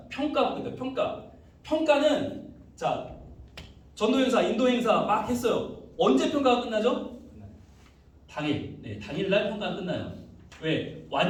평가는, 자, 전도 행사, 인도 행사 막 했어요. 언제 평가가 끝나죠? 당일날 평가가 끝나요. 왜?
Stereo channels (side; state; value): both; identical; correlation 1.00